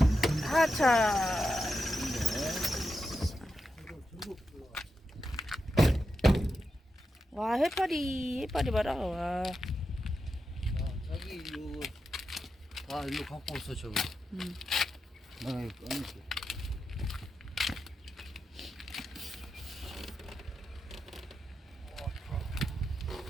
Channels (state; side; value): normal; both; correlation 0.88